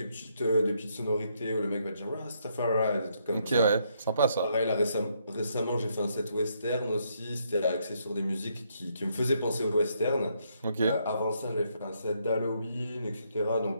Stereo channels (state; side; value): inverted; both; correlation -0.74